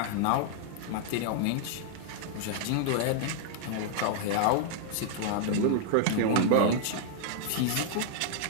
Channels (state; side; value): different; both; correlation -0.01